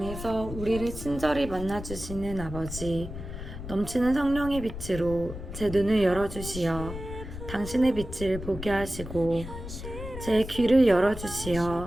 우리를 친절히 만나주시는 아버지, 넘치는 성령의 빛으로 제 눈을 열어주시어 당신의 빛을 보게 하시고 제 귀를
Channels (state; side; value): noise; left; rumble, 9 dB below the sound